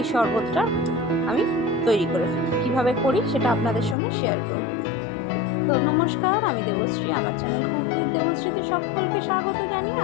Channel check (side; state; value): right; drops out; at 4.0 s